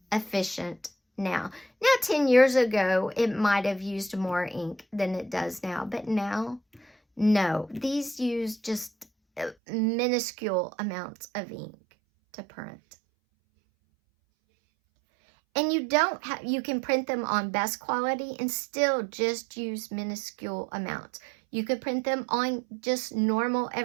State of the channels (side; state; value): left; drops out; at 9.6 s